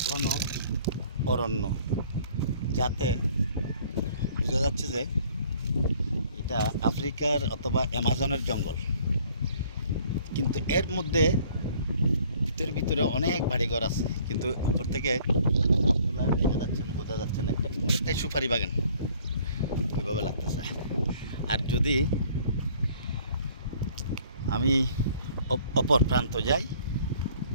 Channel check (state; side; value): inverted; both; correlation -0.57